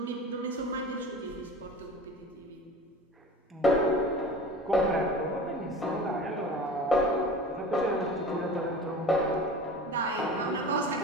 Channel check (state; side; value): normal; both; correlation 0.38